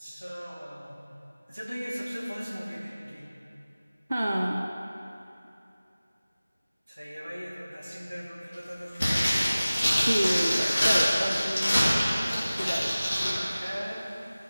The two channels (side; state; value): both; inverted; correlation -0.97